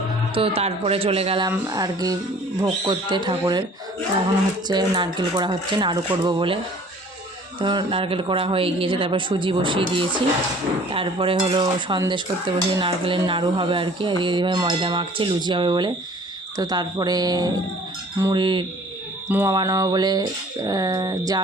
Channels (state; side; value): normal; both; correlation 0.51